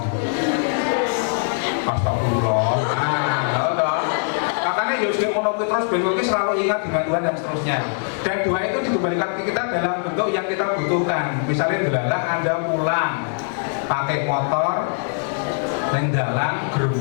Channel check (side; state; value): right; silent; 61 dB below the other